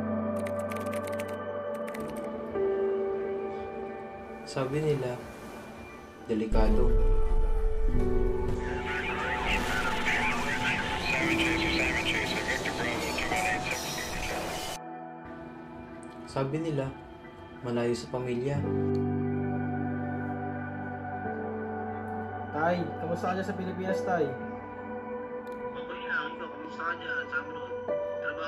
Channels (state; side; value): identical; both; correlation 1.00